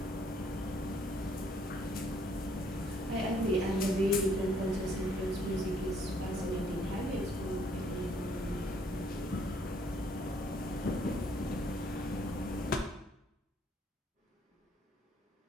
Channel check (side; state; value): both; normal; correlation 0.65